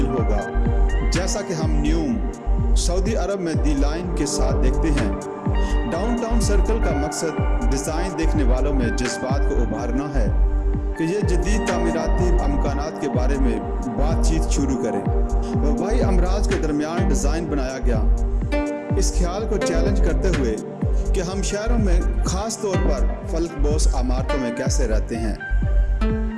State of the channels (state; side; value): identical; both; correlation 1.00